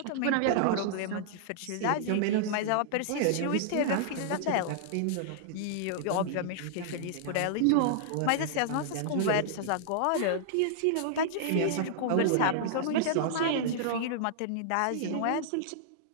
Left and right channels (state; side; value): different; both; correlation -0.01